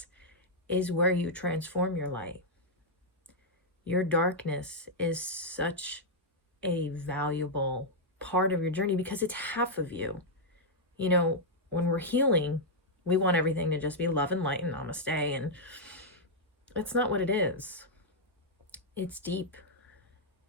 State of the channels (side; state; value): both; normal; correlation -0.05